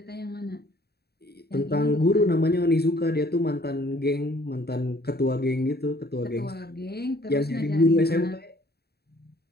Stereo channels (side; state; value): right; late; 0.47 ms